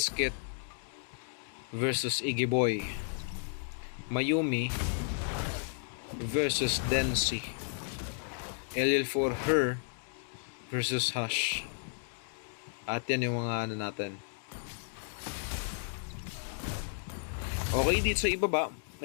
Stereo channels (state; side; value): silent; right; digital silence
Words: versus Iggy Boy. Mayumi versus Densi. LL for her versus Hush. At yan yung mga ano natin. Okay, dito sa ibaba,